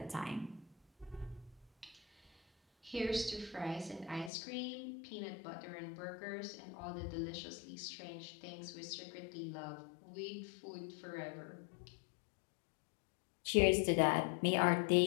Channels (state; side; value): drops out; right; at 4.3 s